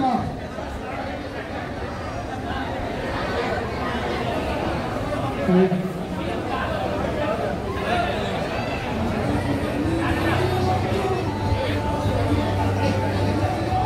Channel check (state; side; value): identical; both; correlation 1.00